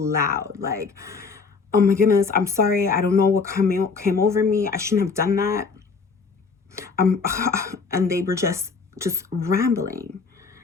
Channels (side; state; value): right; quieter; 4.8 dB